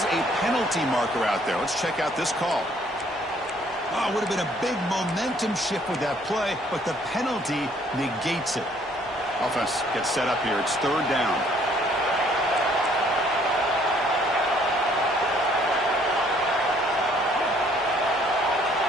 a penalty marker out there. Let's check out this call. Oh, it would have been a big momentum shift with that play, but the penalty negates it. Offense gets set up here. It's third down.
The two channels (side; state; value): both; normal; correlation 0.62